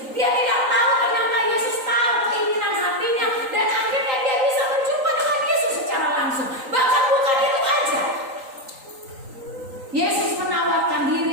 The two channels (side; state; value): left; late; 3.9 ms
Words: Dia tidak tahu ternyata Yesus tahu keinginan hatinya dan akhirnya dia bisa berjumpa dengan Yesus secara langsung. Bahkan bukan itu aja. Yesus menawarkan